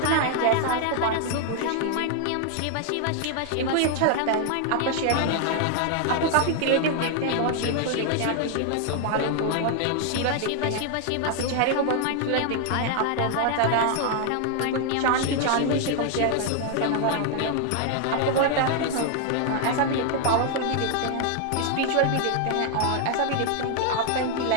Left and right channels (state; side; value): different; both; correlation 0.00